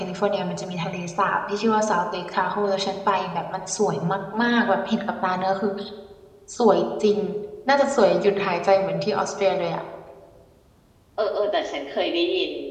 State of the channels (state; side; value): identical; both; correlation 1.00